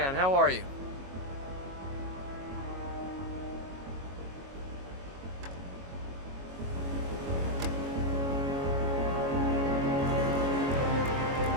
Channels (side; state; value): left; late; 22 ms